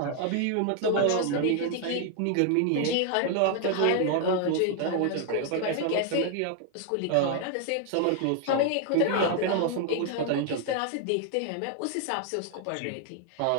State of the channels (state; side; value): different; both; correlation 0.00